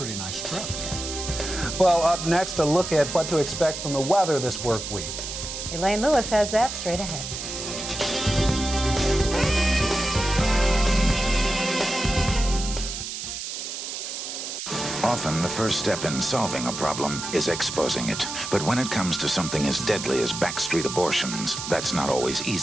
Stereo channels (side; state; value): right; noise; hiss, 6 dB below the sound